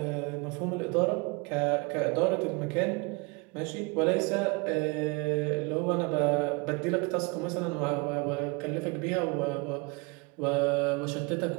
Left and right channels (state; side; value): quieter; left; 28.6 dB